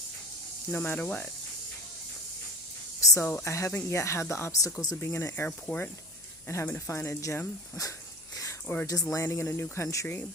No matter what. So I haven't yet had the obstacles of being in an airport and having to find a gym or just landing in a new country,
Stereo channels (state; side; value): noise; right; hum, 29 dB below the sound